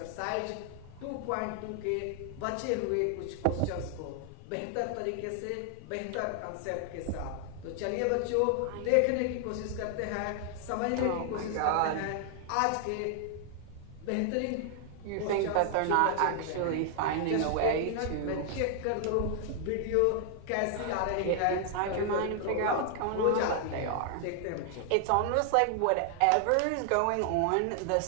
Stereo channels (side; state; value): both; different; correlation 0.00